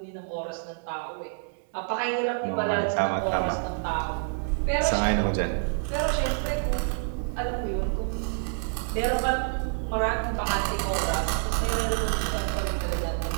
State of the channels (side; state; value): left; silent; 58 dB below the other